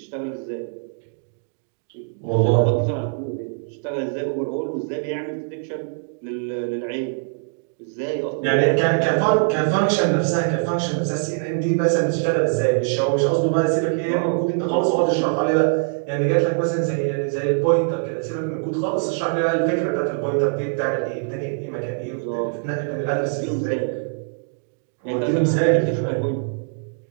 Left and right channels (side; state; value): left; silent; digital silence